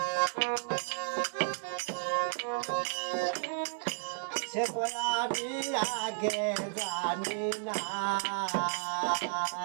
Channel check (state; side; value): silent; left; digital silence